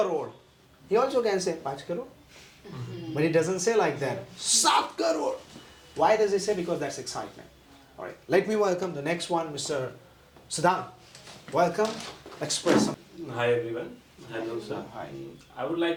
He also can say 5 crore. But he doesn't say like that. 7 crore. Why does he say? Because that's excitement. Alright, let me welcome the next one, Mr. Siddhant. Welcome. Express some. Hi everyone. Hello sir. Hi. I would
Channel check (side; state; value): both; identical; correlation 1.00